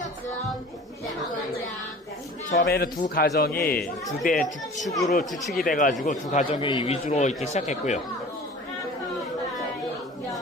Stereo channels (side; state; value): both; normal; correlation 0.43